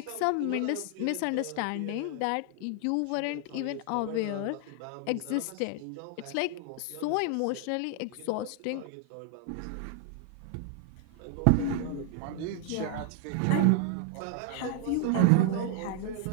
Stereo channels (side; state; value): both; different; correlation 0.00